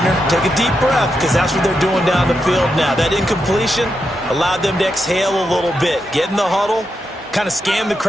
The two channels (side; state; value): both; normal; correlation 0.85